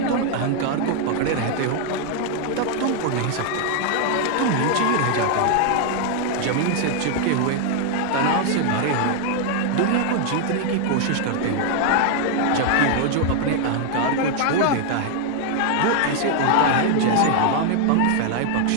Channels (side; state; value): both; different; correlation 0.00